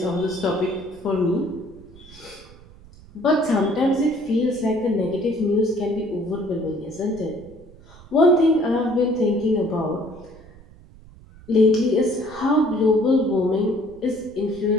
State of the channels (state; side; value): noise; right; rumble, 22 dB below the sound